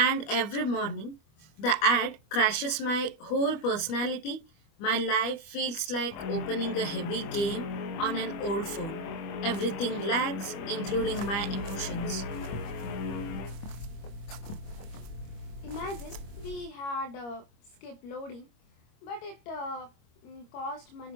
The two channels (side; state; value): right; late; 25 ms